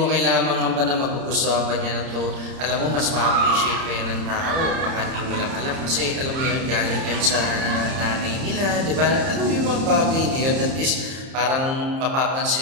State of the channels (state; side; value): late; left; 30 ms